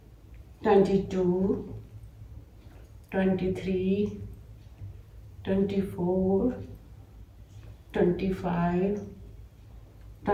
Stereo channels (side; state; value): both; identical; correlation 1.00